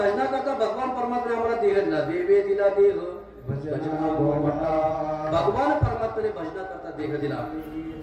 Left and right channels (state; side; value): identical; both; correlation 1.00